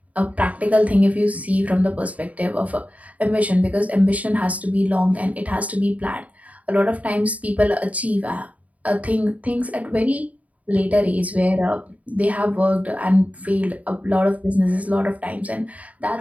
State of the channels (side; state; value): left; late; 0.070 ms